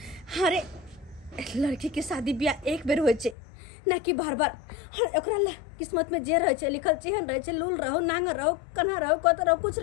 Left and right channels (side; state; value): right; drops out; at 3.4 s